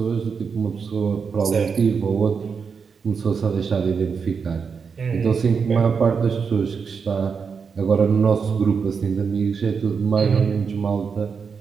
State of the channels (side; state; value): left; quieter; 5.8 dB